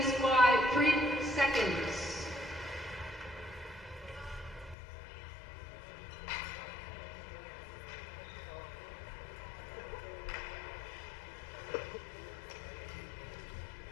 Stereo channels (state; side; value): drops out; right; at 4.8 s